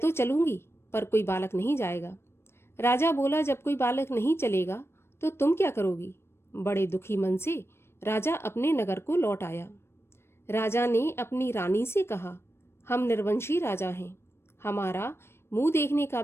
चलूंगी पर कोई बालक नहीं जाएगा। राजा बोला, जब कोई बालक नहीं चलेगा तो तुम क्या करोगी? बड़े दुखी मन से राजा अपने नगर को लौट आया। राजा ने अपनी रानी से कहा, हम निर्वंशी राजा हैं, हमारा मुंह देखने का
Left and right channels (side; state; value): right; late; 0.12 ms